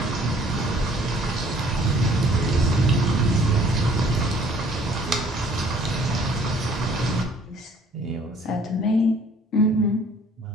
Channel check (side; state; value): both; normal; correlation 0.57